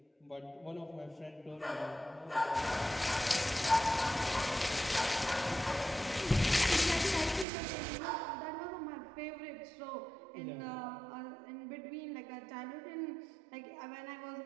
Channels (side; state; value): left; drops out; at 7.5 s